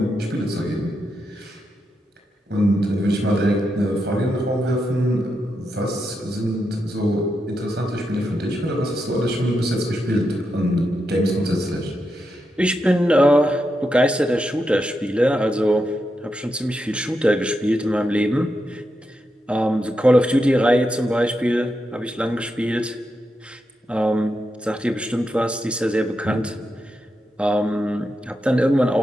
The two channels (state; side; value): normal; both; correlation 0.85